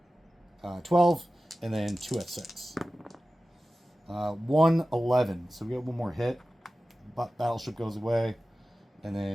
12, and then 2 at 6. 1, 11. So we get one more hit. Battleship goes away. And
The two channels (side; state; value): both; normal; correlation 0.95